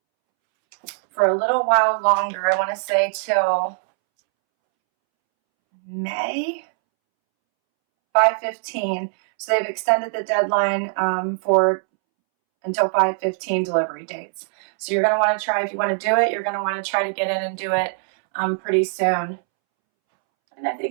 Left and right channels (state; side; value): silent; left; 64 dB below the other